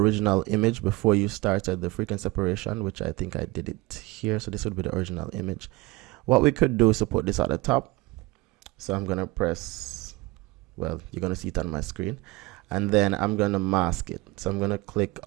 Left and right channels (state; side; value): quieter; left; 21.4 dB